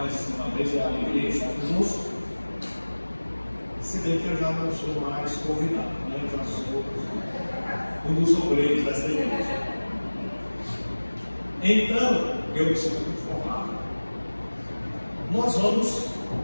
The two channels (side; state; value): both; inverted; correlation -1.00